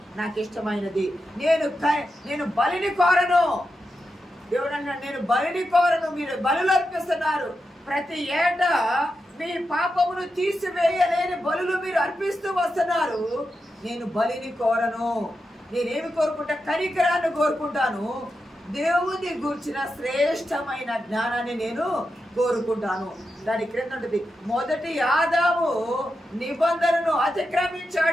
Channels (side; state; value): both; normal; correlation 0.88